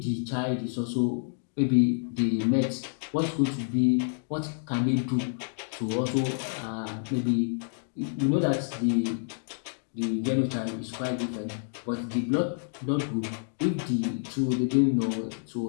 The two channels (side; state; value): right; silent; digital silence